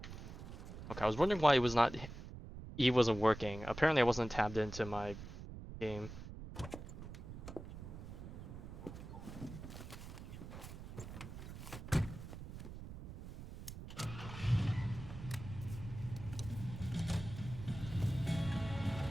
Okay, I was wondering why it was not E wasn't working. Apparently I wasn't tabbed into my game.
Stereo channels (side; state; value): right; noise; rumble, 11 dB below the sound